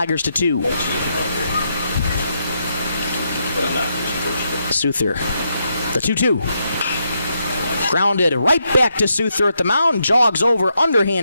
to 2. Souther, the 2-2. Grounded right back to Souther at the mound. Jogs over,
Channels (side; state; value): both; inverted; correlation -0.80